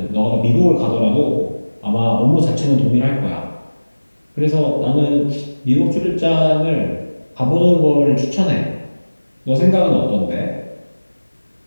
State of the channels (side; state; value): both; inverted; correlation -1.00